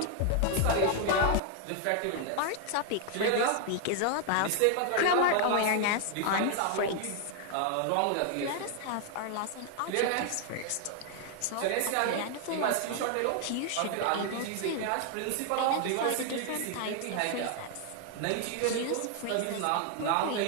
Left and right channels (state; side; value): different; both; correlation 0.00